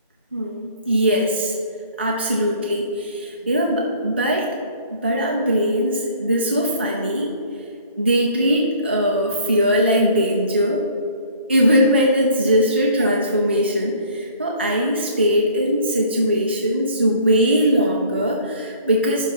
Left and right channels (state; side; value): inverted; both; correlation -0.53